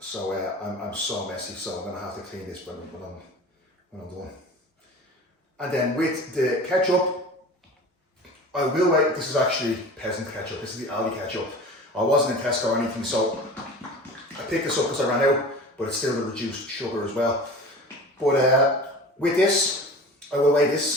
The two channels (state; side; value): normal; both; correlation 0.38